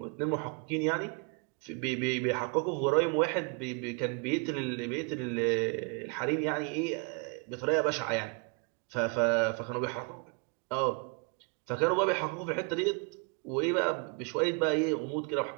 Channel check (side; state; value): left; quieter; 35.7 dB